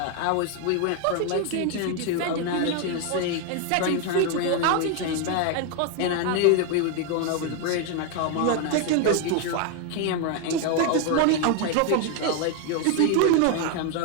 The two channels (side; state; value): both; different; correlation 0.01